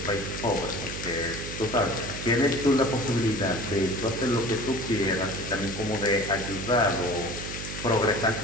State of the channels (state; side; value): noise; right; hum, 8 dB below the sound